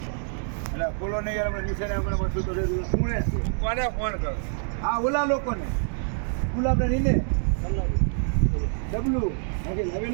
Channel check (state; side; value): silent; left; 61 dB below the other